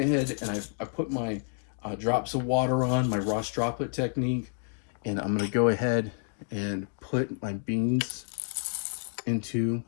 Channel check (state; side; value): silent; right; 58 dB below the other